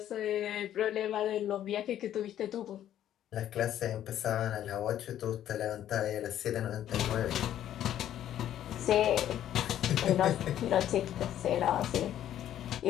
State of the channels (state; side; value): quieter; right; 11.4 dB